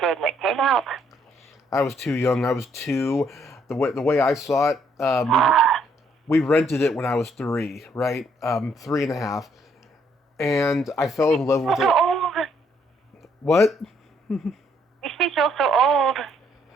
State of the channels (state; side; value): normal; both; correlation 0.69